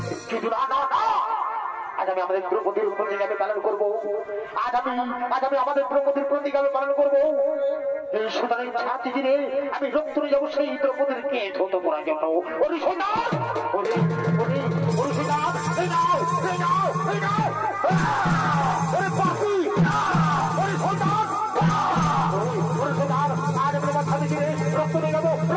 কিন্তু না না না, আজ আমি আমাদের দ্রৌপদীর প্রতিজ্ঞা আমি পালন করবো। আজ আমি আমাদের দ্রৌপদীর প্রতিজ্ঞা আমি পালন করবো। এই সুতরাং ছাতি দিনে আমি রক্ত নিয়ে যাবো সেই দ্রৌপদীর কে ধৌত করার জন্য। ওরে সৈন্যার, ওরে ওরে ওরে সৈন্যার, এই নাও এই নাও এই নাও, ওরে পাখি, ওরে সৈন্যার, ওরে সৈন্যার, আজ আমি আমার ছাতি দিনে রক্ত নিয়ে যাবো,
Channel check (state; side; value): identical; both; correlation 1.00